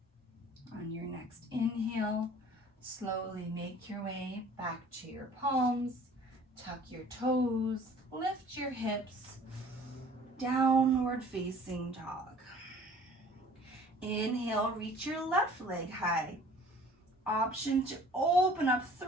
On your next inhale, slowly make your way back to your palms, tuck your toes, lift your hips, downward facing dog. Inhale, reach your left leg high. Option to open up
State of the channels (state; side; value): normal; both; correlation 0.51